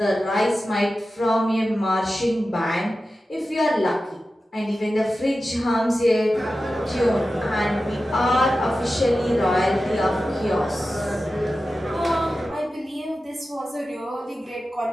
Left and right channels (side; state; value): both; normal; correlation 0.93